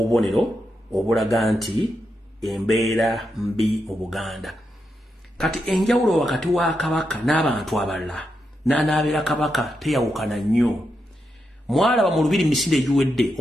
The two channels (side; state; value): both; normal; correlation 0.85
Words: obulaga nti embeera mbi mu Buganda. Kati enjawulo wakati wa Kabaka n'abantu abalala n'anaabera Kabaka teyawukana nnyo. Mwalaba mu Lubiri misinde egiwedde